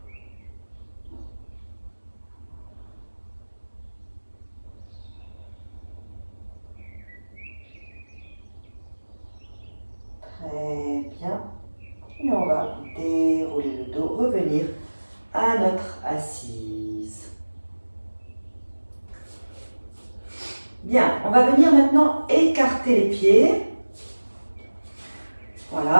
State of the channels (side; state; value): both; inverted; correlation -1.00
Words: Très bien. Et on va dérouler le dos, revenir à notre assise. Bien, on va venir maintenant écarter les pieds.